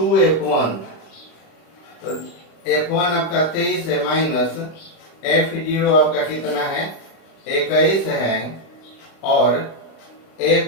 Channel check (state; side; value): late; right; 36 ms